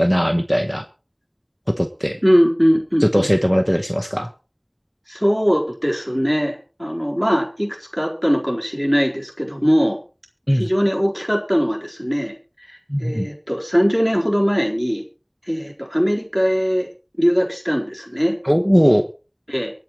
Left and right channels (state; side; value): identical; both; correlation 1.00